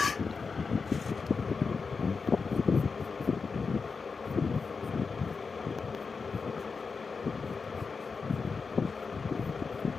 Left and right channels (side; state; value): right; quieter; 4.9 dB